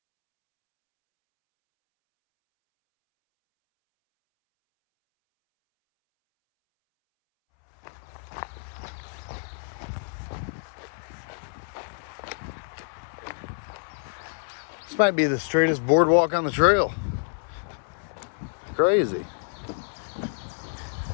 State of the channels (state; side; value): silent; right; 59 dB below the other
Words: This might be the straightest boardwalk on the trail. Crazy.